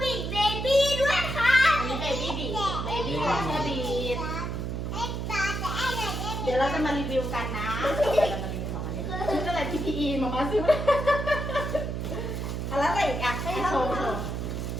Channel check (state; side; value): noise; right; hum, 3 dB below the sound